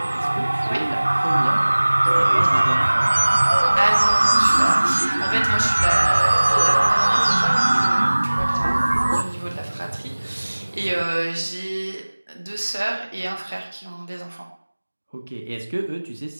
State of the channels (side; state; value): both; inverted; correlation -1.00